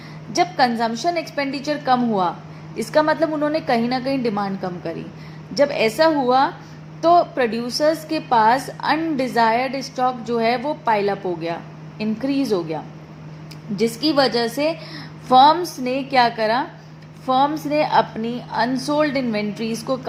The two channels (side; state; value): both; identical; correlation 1.00